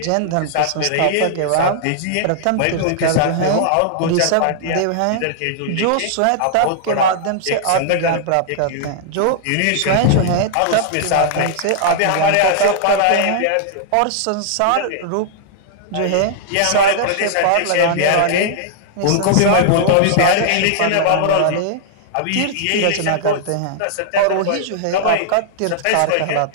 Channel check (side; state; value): both; different; correlation -0.01